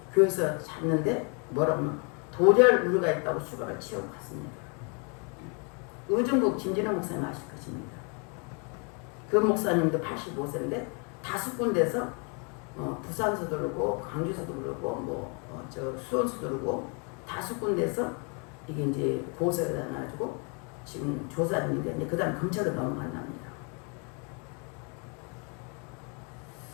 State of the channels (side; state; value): right; quieter; 35.9 dB